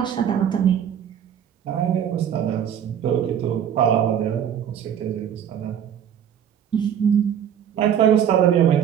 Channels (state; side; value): quieter; left; 9.1 dB